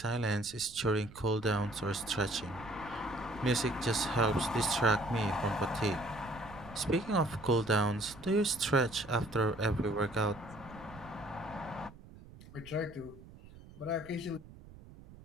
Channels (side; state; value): right; noise; rumble, 19 dB below the sound